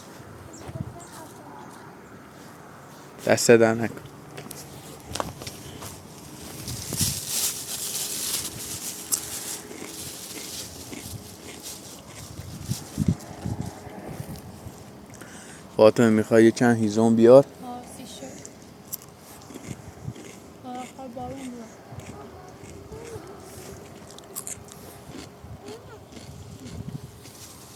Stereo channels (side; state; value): both; identical; correlation 1.00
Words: دست در نکن. فاطمه میخوای چند هیزم بیار؟ آسی شد آخر بارون بیاد.